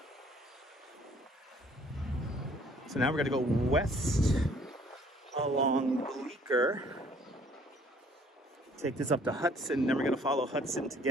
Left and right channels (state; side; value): normal; both; correlation 0.59